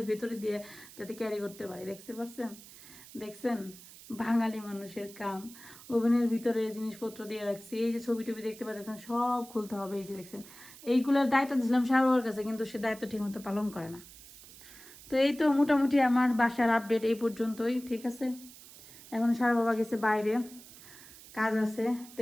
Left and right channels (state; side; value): noise; right; hiss, 19 dB below the sound